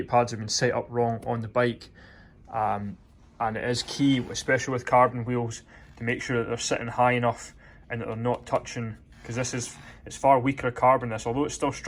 pads have been set up wrong on the bike. And it is key, especially with carbon wheels, to make sure that they're sitting high enough and that they're not touching, because it's far weaker carbon this, although it's still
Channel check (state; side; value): identical; both; correlation 1.00